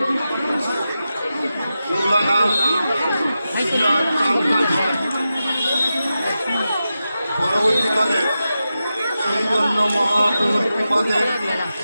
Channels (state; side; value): inverted; both; correlation -0.91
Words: পরবর্তীকালে চৈতন্য মহাপ্রভুর কৃপাতে